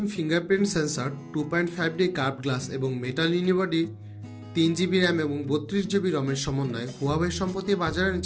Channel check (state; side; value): identical; both; correlation 1.00